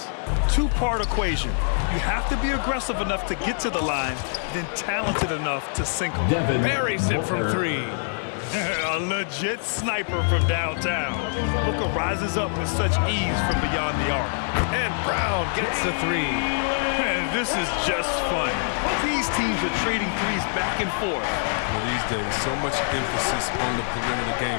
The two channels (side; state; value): right; silent; digital silence